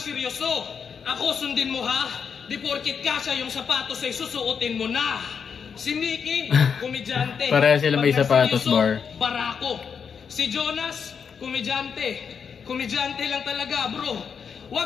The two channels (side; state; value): right; quieter; 6.6 dB